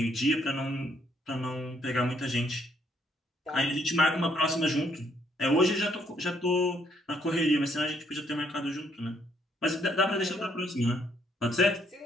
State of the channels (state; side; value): normal; both; correlation 0.70